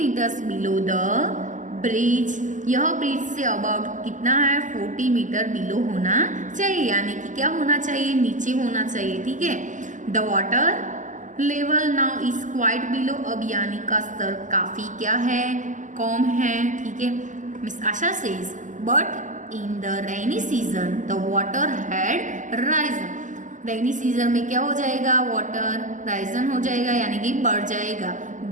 below the bridge, यह ब्रिज से अबाउट कितना है 40 मीटर बिलो होना चाहिए, यानी कि क्या होना चाहिए, नीचे होना चाहिए। ठीक है, the water level now is quite below, अब यानी का स्तर काफी क्या है, कम है। ठीक है, miss Asha says but in the rainy season the water had Ryzen, rainy season में क्या हो जाएगा, वाटर राइजन हो जाएगा, यानी कि बढ़ जाएगा।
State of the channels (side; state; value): left; late; 0.37 ms